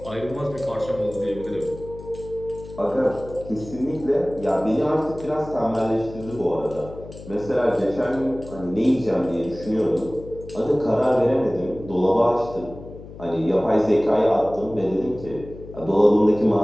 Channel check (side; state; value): left; noise; hum, 15 dB below the sound